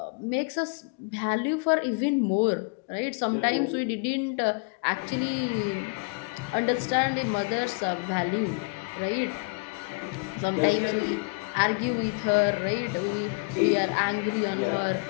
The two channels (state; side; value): quieter; right; 32.0 dB